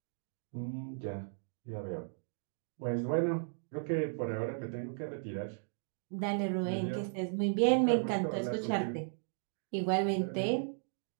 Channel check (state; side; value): silent; left; digital silence